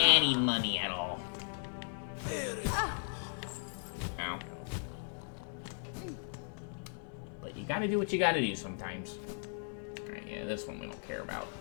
money at all. Ow. But you gotta do what you gotta do sometimes. Alright, yeah, this one we don't care about.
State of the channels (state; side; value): silent; right; 53 dB below the other